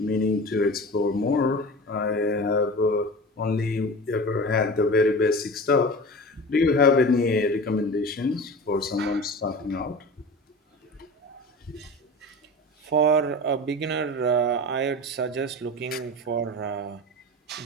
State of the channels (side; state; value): both; normal; correlation 0.33